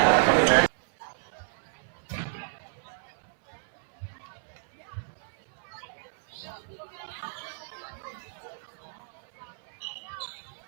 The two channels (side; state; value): left; silent; digital silence